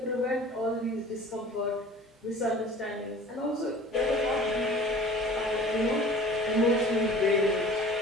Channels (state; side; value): normal; both; correlation 0.46